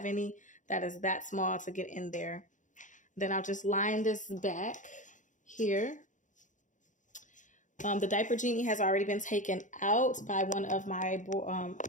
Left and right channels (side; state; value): right; late; 0.36 ms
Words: any that is that small to get in there. Then I'll just line this back here. The diaper genie has already been taken out by one of my